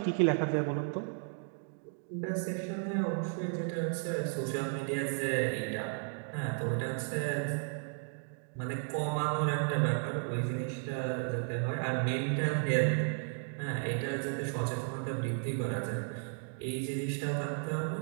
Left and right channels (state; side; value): silent; left; 55 dB below the other